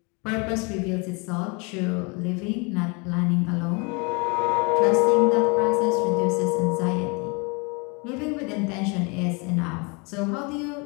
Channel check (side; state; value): right; quieter; 30.6 dB